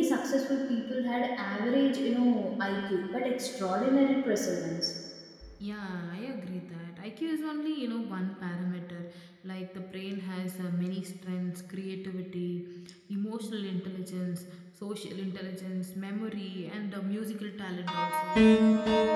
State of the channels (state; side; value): identical; both; correlation 1.00